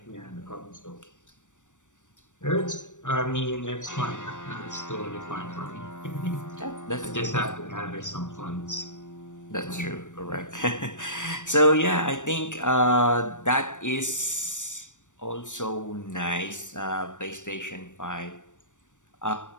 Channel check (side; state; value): right; late; 0.86 ms